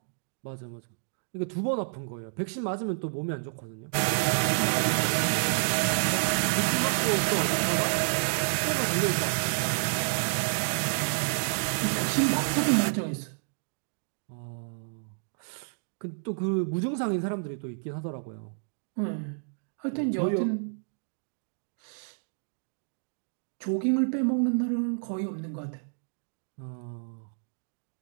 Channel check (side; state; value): left; silent; digital silence